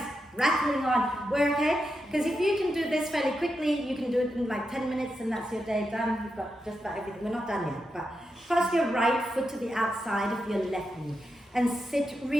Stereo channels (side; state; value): both; normal; correlation 0.87